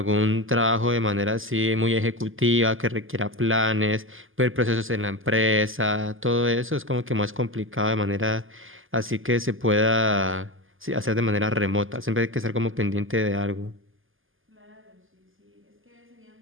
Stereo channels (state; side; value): late; left; 0.59 ms